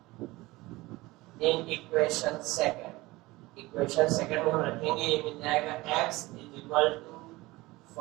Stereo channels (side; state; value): left; quieter; 20.5 dB